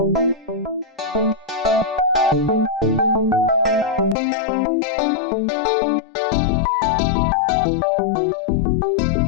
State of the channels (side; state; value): right; drops out; at 4.2 s